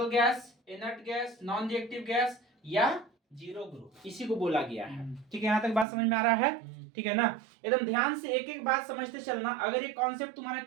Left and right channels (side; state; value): left; drops out; at 5.9 s